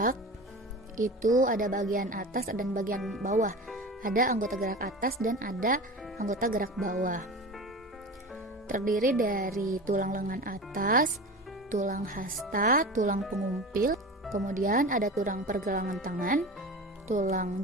itu ada bagian atas dan bagian bawah. Ada anggota gerak atas dan ada anggota gerak bawah. Terdiri dari tulang lengan atas, tulang hasta, tulang pengumpil, kemudian ada tulang pergelangan tangan, tulang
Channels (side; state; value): both; normal; correlation 0.31